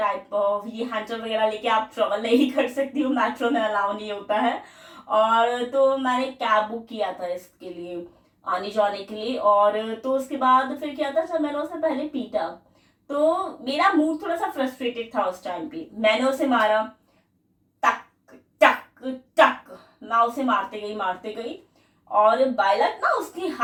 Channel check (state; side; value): identical; both; correlation 1.00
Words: ऑफ ये हैंडल वगैरह लेके आप ट्रेवल नहीं कर सकती हो, मेट्रो में अलाउ नहीं होता है। और तो मैंने कैब बुक किया था इसके लिए आने जाने के लिए। और तो उसके बाद फिर क्या था, जब मैंने उसे पहले पीटा तो मेरा मूड थोड़ा सा फ्रस्ट्रेटेड था उस टाइम पे, मैंने उसे मारा, टक टक टक, मैं उसे मारते गई। और बायलट ना उसके